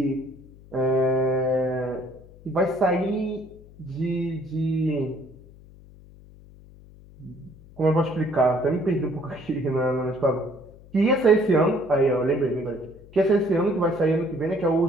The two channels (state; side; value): noise; left; hum, 22 dB below the sound